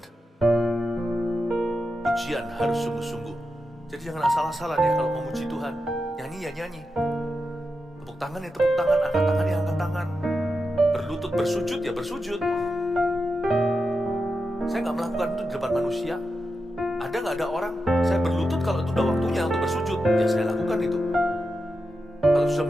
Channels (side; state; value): both; normal; correlation 0.88